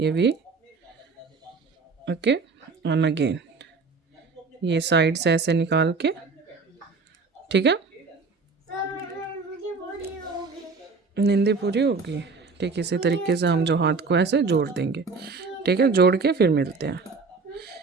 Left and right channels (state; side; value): quieter; left; 4.4 dB